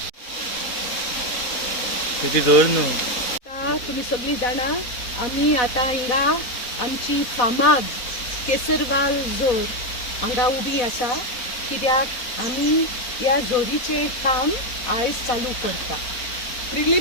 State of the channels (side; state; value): right; late; 4.0 ms